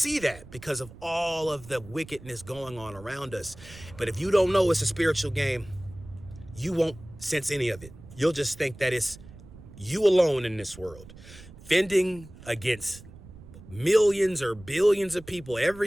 that because of all of the wickedness going on around us. But if you don't know it's a spiritual game, you won't sense any of it. You'll just think that it's you alone in this world, fending against millions or billions of people.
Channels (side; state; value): right; noise; rumble, 18 dB below the sound